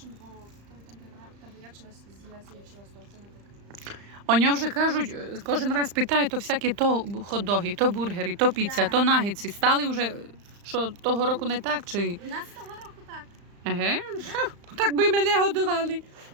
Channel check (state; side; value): late; left; 35 ms